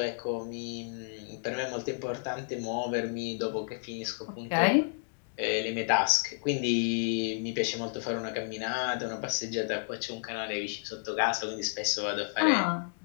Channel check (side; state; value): right; silent; digital silence